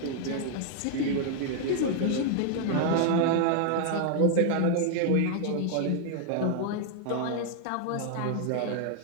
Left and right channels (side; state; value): both; different; correlation 0.00